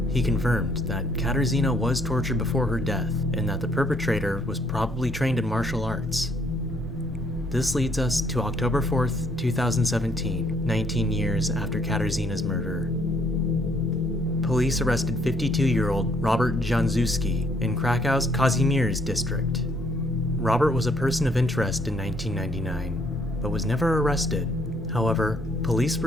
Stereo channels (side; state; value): both; normal; correlation 0.67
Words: He confirmed that Katarzyna was tortured before her death and that the perpetrator was probably trained in martial arts. This leads us to October 4th, 2017, 19 years after Katarzyna's murder. Police arrested 52-year-old Robert Januszewski in Krakow's Kazimierz district. Robert was a person of interest in 1999, but was never arrested. However, police